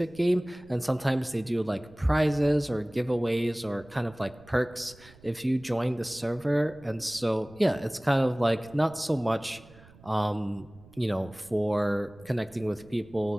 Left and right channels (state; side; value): noise; right; rumble, 24 dB below the sound